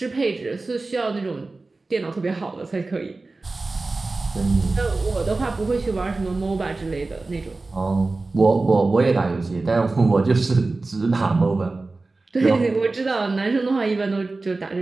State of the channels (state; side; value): quieter; left; 3.4 dB